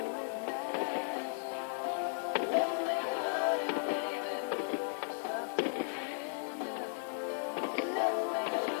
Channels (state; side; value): silent; right; digital silence